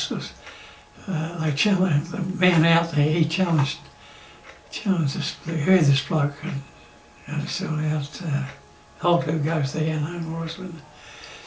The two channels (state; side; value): identical; both; correlation 1.00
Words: this. They challenged the man out there. He challenged this. They heard this bloke and still out. Holt who goes there, no more. And